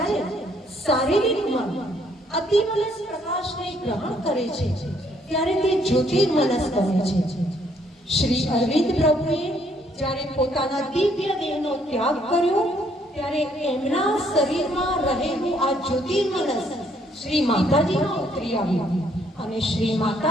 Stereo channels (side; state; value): both; normal; correlation 0.68